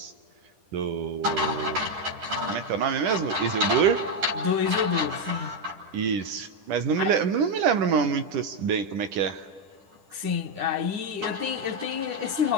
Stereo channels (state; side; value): late; left; 10 ms